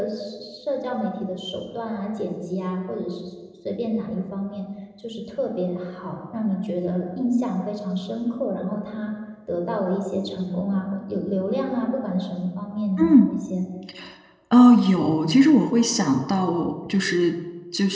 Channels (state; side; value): identical; both; correlation 1.00